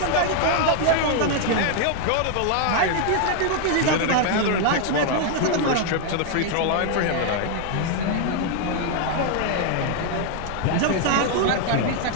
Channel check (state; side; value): different; both; correlation 0.00